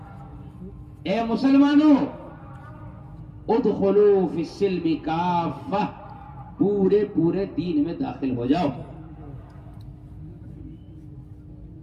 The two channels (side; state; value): both; identical; correlation 1.00